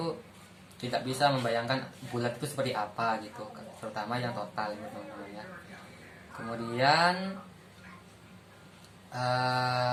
tidak bisa membayangkan bulat itu seperti apa gitu, terutama yang total gitu teman-teman ya. Kemudian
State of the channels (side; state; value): both; identical; correlation 1.00